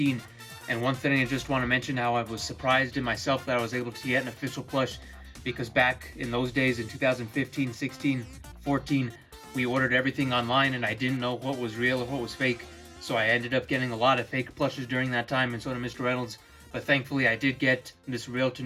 And one thing I just want to mention, how I was surprised in myself that I was able to get an official plush, because back in those days in 2015, 16, 14, we ordered everything online and I didn't know what was real or what was fake. So I ended up getting a lot of fake plushes during that time, and so did Mr. Reynolds. But thankfully I did get this real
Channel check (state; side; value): identical; both; correlation 1.00